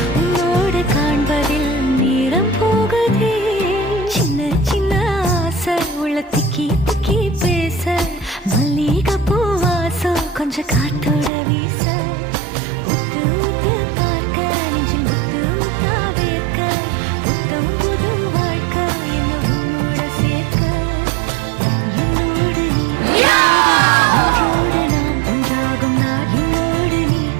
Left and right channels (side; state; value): left; drops out; at 11.3 s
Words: திக்கி திக்கி பேச மல்லிகை பூவாசம் கொஞ்சம் காத்தோட வீச உத்து உத்து பார்க்க நெஞ்சில் முத்து முத்தா வேர்க்க புத்தம் புது வாழ்க்கை என்ன உன்னோட சேர்க்க என்னோடு நீ ஒன்றோடு நாம் ஒன்றாகும் நாள் என்னோடு நீ